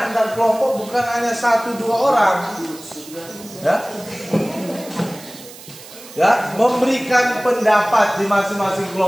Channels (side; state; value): right; noise; hiss, 18 dB below the sound